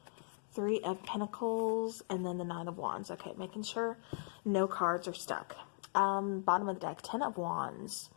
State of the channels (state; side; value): silent; right; 52 dB below the other